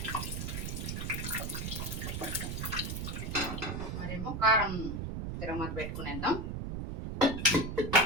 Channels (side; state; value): right; noise; rumble, 4 dB below the sound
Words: మరేమో కారం తిరగమత పెట్టుకునేద్దాం.